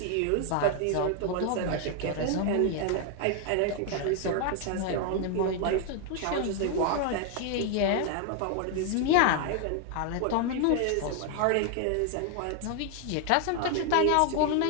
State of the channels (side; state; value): both; different; correlation 0.00